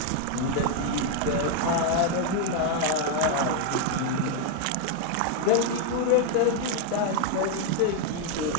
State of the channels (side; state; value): both; different; correlation 0.01